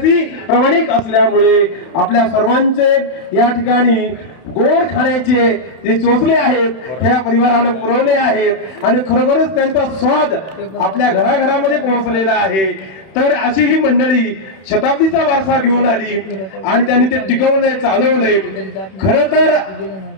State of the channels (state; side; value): late; right; 31 ms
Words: प्रामाणिक असल्यामुळे आपल्या सर्वांचे या ठिकाणी गोड खाण्याचे जे चोचले आहेत त्या परिवारानं पुरवले आहेत आणि खरोखरच त्यांचा स्वाद आपल्या घराघरामध्ये पोहोचलेला आहे. तर अशी ही मंडळी शताब्दीचा वारसा घेऊन आली आणि त्यांनी ते टिकवलंय, चालवलंय. खरं तर